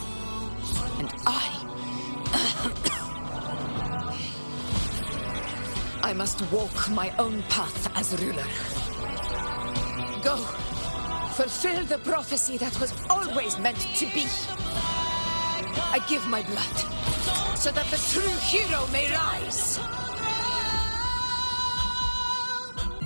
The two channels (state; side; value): inverted; both; correlation -1.00